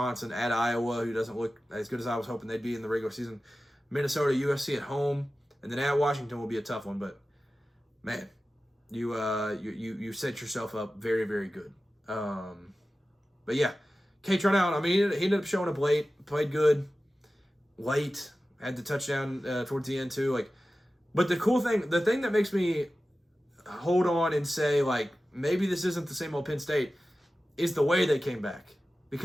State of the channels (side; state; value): both; normal; correlation 0.95